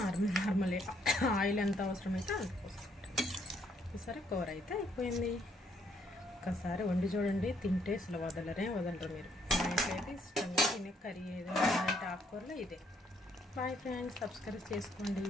నార్మల్ ఆయిల్ ఎంత అవసరమైతే అంత పోసుకుంటాను. ఈసారి కూర అయితే అయిపోయింది. ఒక్కసారి వండి చూడండి, తింటే అసలు వదలరు మీరు. మా ఇంట్లో అయితే ఇష్టంగా తినే కర్రీ ఏదైనా అంటే ఆకుకూరలో ఇదే. బాయ్ ఫ్రెండ్స్, సబ్స్క్రైబ్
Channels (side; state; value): both; normal; correlation 0.70